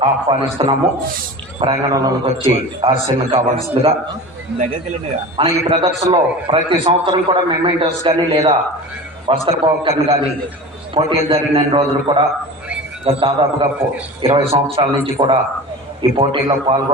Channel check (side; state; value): both; normal; correlation 0.33